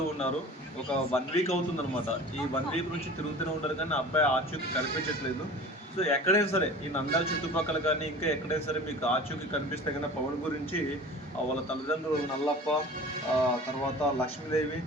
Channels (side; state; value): both; normal; correlation 0.40